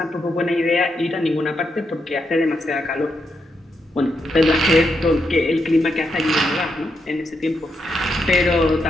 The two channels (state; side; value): normal; both; correlation 0.82